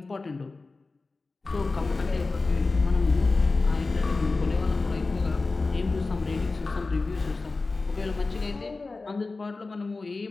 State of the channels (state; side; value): quieter; right; 3.7 dB